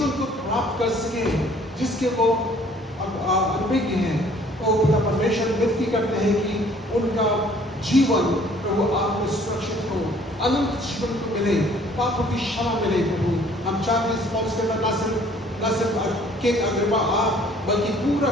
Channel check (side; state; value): both; normal; correlation 0.57